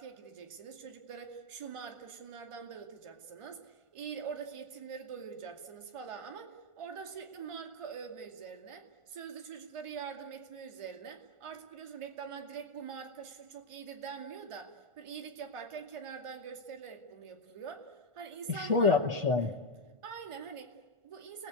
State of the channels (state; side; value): late; left; 1.5 ms